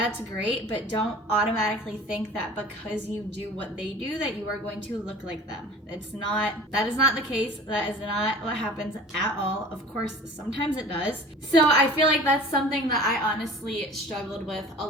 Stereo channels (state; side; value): normal; both; correlation 0.42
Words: great, but don't automatically think that because you do what they do that you are going to look like them. That is not the case. That is not what happens at all. Of course, sometimes it does. So I feel like that's something that I honestly struggled with a